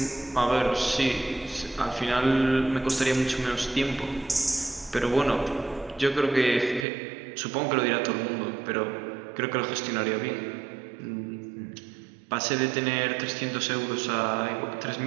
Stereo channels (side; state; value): left; drops out; at 6.9 s